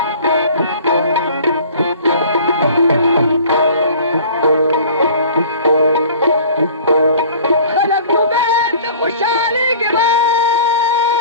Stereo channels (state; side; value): inverted; both; correlation -0.46